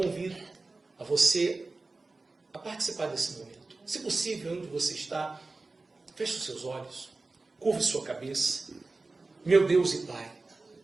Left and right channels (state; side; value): quieter; left; 3.5 dB